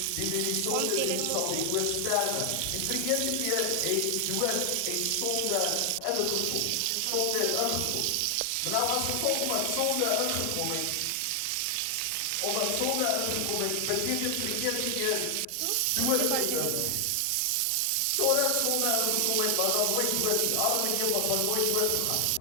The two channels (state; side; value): different; both; correlation 0.00